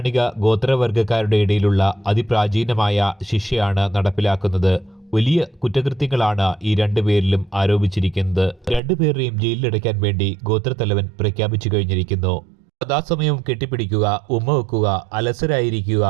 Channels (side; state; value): left; drops out; at 8.8 s